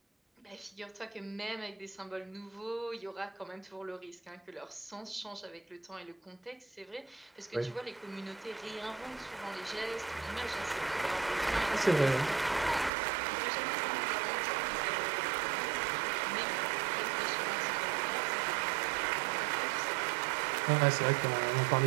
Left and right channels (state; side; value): drops out; left; at 12.9 s